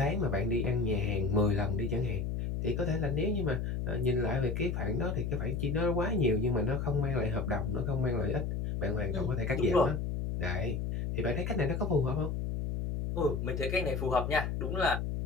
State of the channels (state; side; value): noise; left; hum, 2 dB below the sound